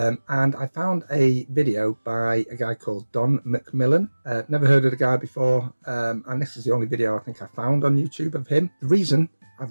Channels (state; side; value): inverted; both; correlation -1.00